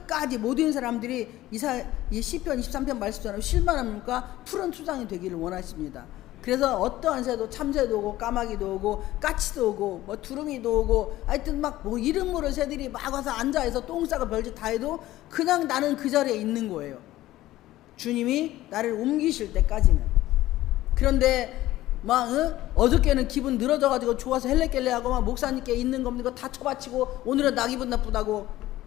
모든 사람들이 이 시편 23편 말씀처럼 실만합니까? 푸른 초장이 되기를 원하십니다. 그래서 어떠한 새도, 참새도 오고 까마귀도 오고 까치도 오고 뭐 두루미도 오고, 하여튼 막 뭐 이름 모를 새들이 막 와서 앉아서 똥 싸고 별짓 다 해도 그냥 나는 그 자리에 있는 거예요. 주님이 나를 옮기실 때까지는. 그런데 막 어저께는 기분 늘어져가지고 좋아서 헬레켈레하고 막 목사님께 있는 겁니다 다 쳐바치고, 오늘은 나 기분 나쁘다고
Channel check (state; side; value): quieter; right; 15.6 dB